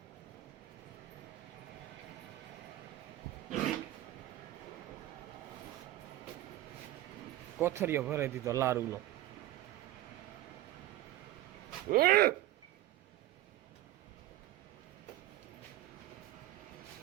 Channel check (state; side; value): quieter; left; 15.0 dB